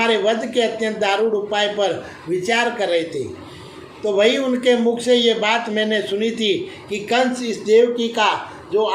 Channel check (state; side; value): identical; both; correlation 1.00